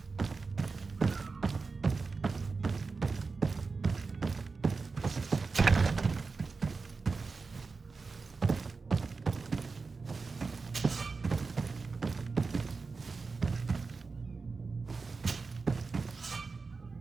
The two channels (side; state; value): left; quieter; 4.4 dB